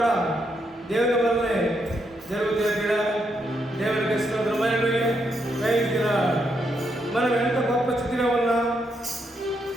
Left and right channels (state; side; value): normal; both; correlation 0.79